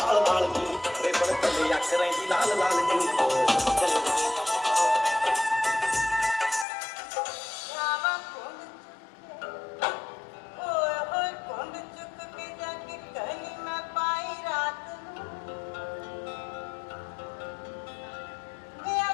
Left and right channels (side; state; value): right; drops out; at 6.7 s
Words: ਨਾਲ ਨਾਲ ਨੀ ਰੇ ਬਣ ਥੱਲੇ ਅੱਖ ਰਹਿੰਦੀ ਲਾਲ ਲਾਲ ਨੀ